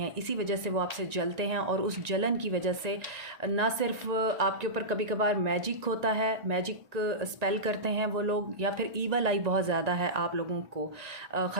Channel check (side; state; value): left; late; 1.9 ms